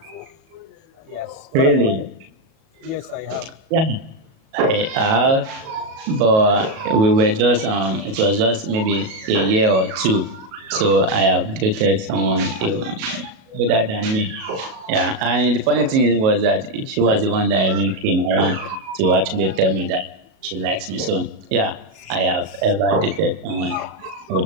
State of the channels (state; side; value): late; left; 37 ms